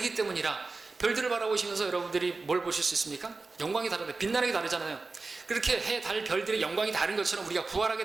때문이라. 별들을 바라보시면서 여러분들이 뭘 보실 수 있습니까? 영광이 다르다. 빛나는 게 다르잖아요. 그렇게 해, 달, 별들의 영광이 다른 것처럼 우리가 부활하게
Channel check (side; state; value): left; quieter; 3.8 dB